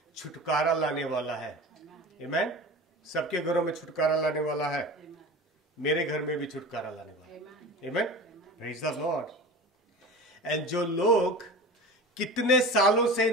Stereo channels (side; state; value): both; normal; correlation 0.34